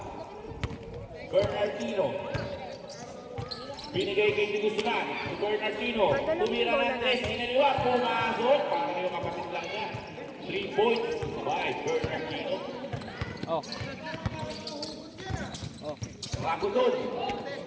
Bernardino. Binigay kay Guzman. Si Bernardino. Tumira ng tres. Inaliwa. Pumasok. Para yung kapatid lang niya. 3 points by Bernardino. Oh. Oh. Ragodon.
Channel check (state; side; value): identical; both; correlation 1.00